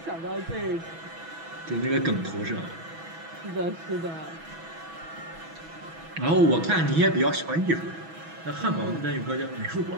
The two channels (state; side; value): late; left; 6.1 ms